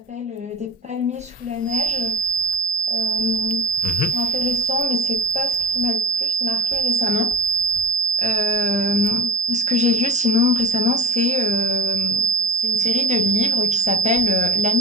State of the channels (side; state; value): both; normal; correlation 0.44